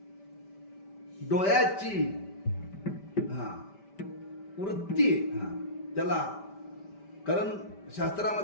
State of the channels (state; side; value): late; right; 5.1 ms